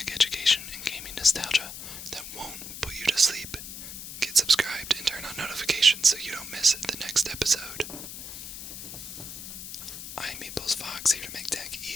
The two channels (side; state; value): left; noise; hiss, 10 dB below the sound